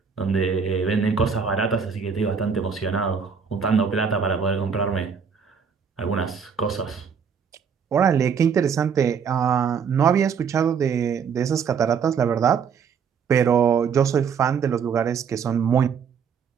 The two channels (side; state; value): left; quieter; 6.5 dB